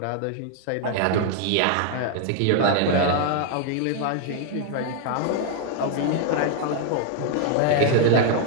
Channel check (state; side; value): different; both; correlation 0.00